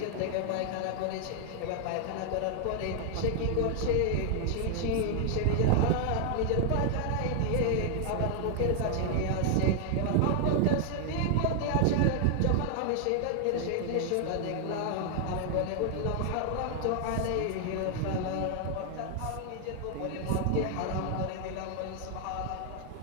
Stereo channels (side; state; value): both; different; correlation 0.00